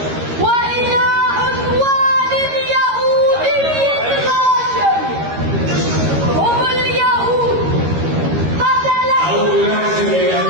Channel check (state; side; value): late; left; 13 ms